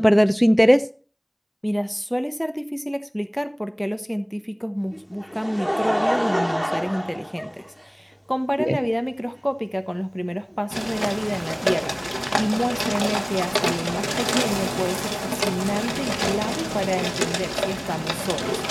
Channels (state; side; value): identical; both; correlation 1.00